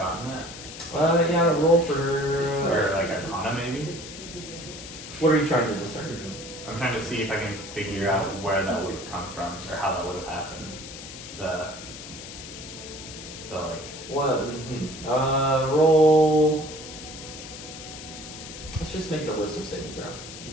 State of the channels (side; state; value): left; noise; hiss, 12 dB below the sound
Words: that? Yeah, roll for. Or like Arcana maybe? What are you trying to discern? I'm trying to see if I can figure out where that would have come from or how that would have happened. the like. What? Roll. Let's just make it a wisdom saving throw.